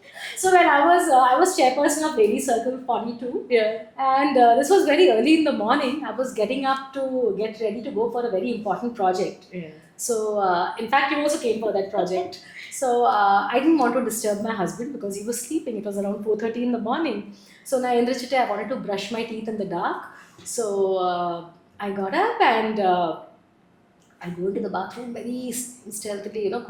So when I was chairperson of Lady Circle 42, and this was very early in the morning. I was getting up to get ready to go for a very important project. So in fact, you also came for that project. So I didn't want to disturb my husband because he was sleeping. It was around 4:30 in the morning. So na Indrachite, I wanted to brush my teeth in the dark. So I got up and I go into the bathroom very stealthily,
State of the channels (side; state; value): both; identical; correlation 1.00